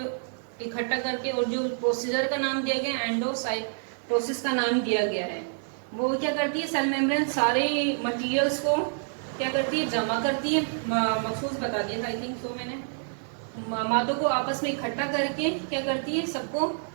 इकट्ठा करके, और जो प्रोसीजर का नाम दिया गया एंडोसाइटोसिस का नाम दिया गया है। वो क्या करती है, सेल मेम्ब्रेन सारे मटेरियल्स को क्या करती है, जमा करती है। मखसूस बता दिया था आई थिंक सो मैंने। मादों को आपस में इकट्ठा करके क्या करती है, सबको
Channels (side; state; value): left; silent; digital silence